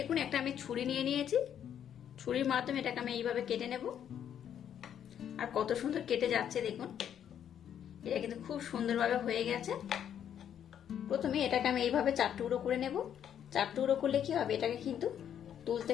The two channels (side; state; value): right; quieter; 9.4 dB